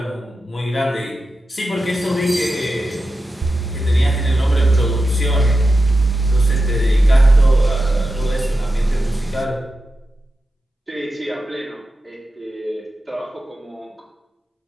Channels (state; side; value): normal; both; correlation 0.91